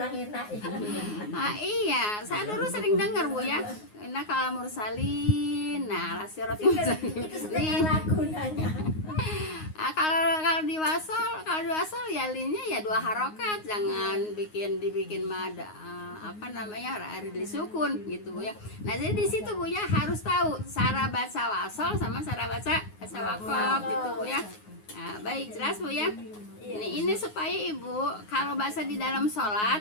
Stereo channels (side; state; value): right; late; 9.5 ms